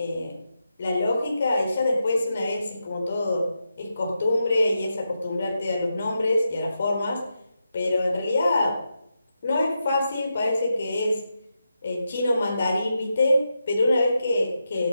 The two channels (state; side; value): inverted; both; correlation -0.87